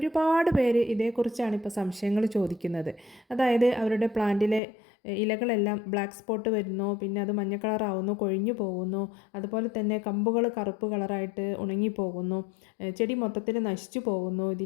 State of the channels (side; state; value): right; drops out; at 4.6 s